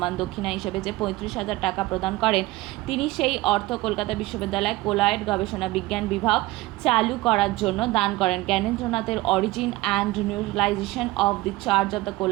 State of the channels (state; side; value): quieter; left; 19.5 dB